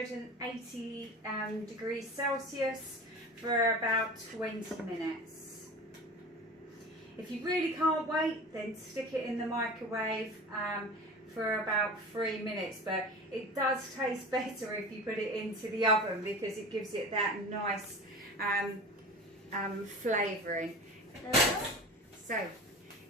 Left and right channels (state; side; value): normal; both; correlation 0.34